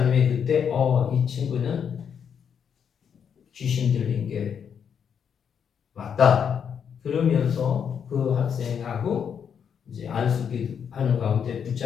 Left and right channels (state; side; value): quieter; right; 7.6 dB